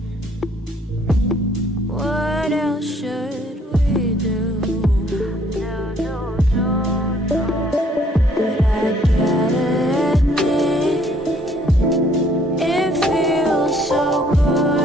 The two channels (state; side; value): normal; both; correlation 0.63